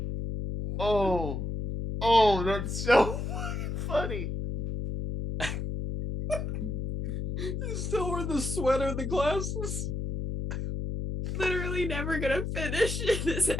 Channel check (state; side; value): noise; left; hum, 3 dB below the sound